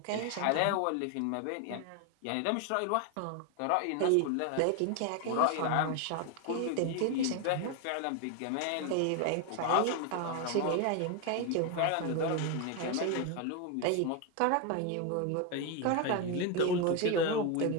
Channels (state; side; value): different; both; correlation 0.01